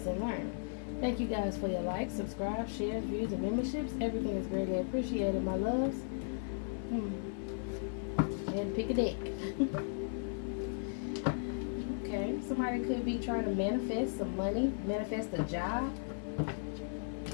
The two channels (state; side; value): silent; right; 54 dB below the other